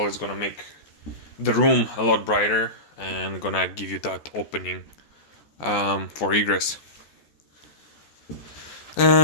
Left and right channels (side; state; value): right; late; 14 ms